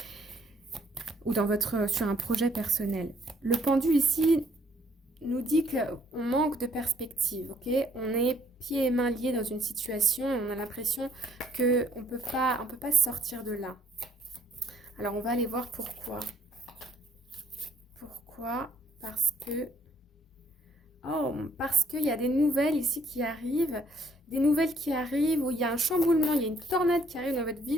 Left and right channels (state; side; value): normal; both; correlation 0.65